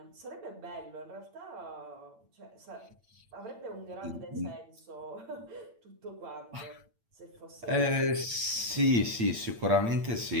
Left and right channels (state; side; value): late; left; 8.8 ms